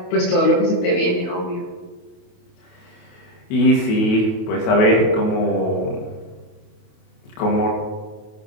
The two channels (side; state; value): right; late; 28 ms